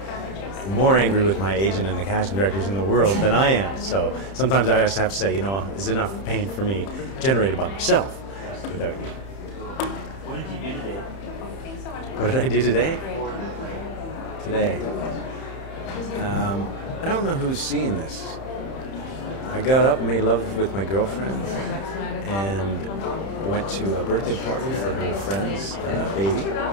more angry with my agent and the casting directors in the world than I am. So sometimes I just have to say, is enough pain for me generated by myself without you. What did you do today? What did I do today? Today. I don't know who's seeing this. I got up and made love with my girlfriend and went to a birthday party for her friend's baby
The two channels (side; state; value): right; late; 31 ms